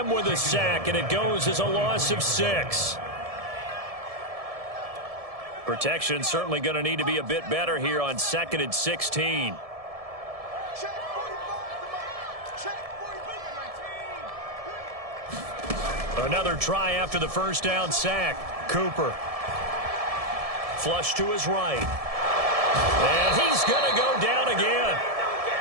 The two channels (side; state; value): left; late; 1.7 ms